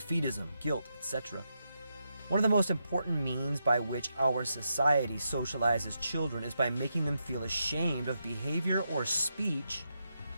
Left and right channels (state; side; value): inverted; both; correlation -0.84